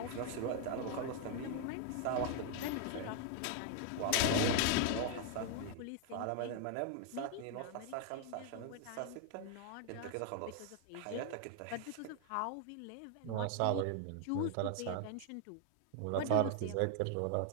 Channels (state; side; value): different; both; correlation 0.00